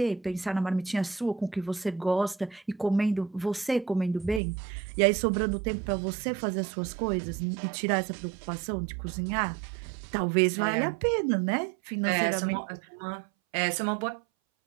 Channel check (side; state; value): left; drops out; at 4.4 s